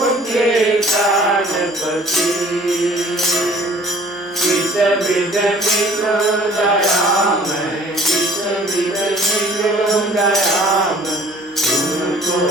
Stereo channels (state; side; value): normal; both; correlation 0.52